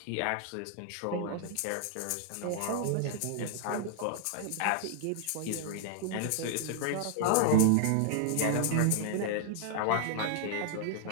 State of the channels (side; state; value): both; different; correlation 0.00